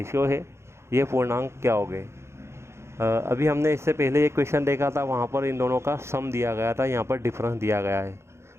है, ये पूर्णांक क्या हो गए? अभी हमने इससे पहले एक क्वेश्चन देखा था, वहाँ पर इन दोनों का सम दिया गया था, यहाँ पर डिफरेंस दिया गया है।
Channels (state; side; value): late; left; 0.13 ms